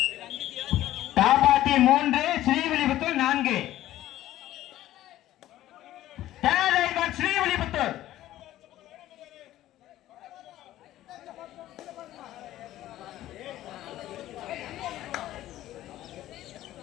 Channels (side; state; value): right; quieter; 14.2 dB